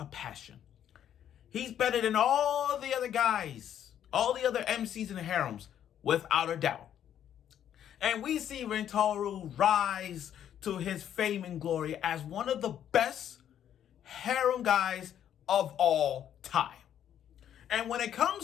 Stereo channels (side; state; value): right; quieter; 10.1 dB